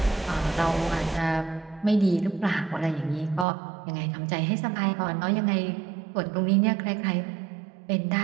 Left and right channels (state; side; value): drops out; left; at 3.5 s